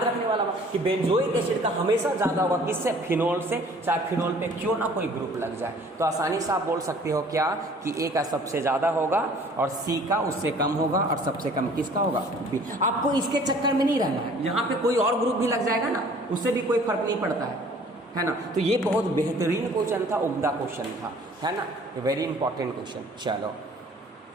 रखने वाला बात कि बेंजोइक एसिड का हमेशा ज्यादा होगा किससे, फिनोल से, चाहे फिनोल पे क्यों ना कोई ग्रुप लग जाए। तो आसानी से आप बोल सकते हो क्या कि ए का सबसे ज्यादा होगा और सी का उससे कम होगा और सबसे कम किसका होगा, बी। आपको इसके चक्कर में नहीं रहना है, यहाँ पे कोई और ग्रुप भी लग जाएगा ना, उससे भी कोई फर्क नहीं पड़ता है ना। तो ये बहुत बेहतरीन क्वेश्चन था, उम्दा क्वेश्चन था, है ना, वेरी इंपॉर्टेंट क्वेश्चन। चलो,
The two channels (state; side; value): normal; both; correlation 0.52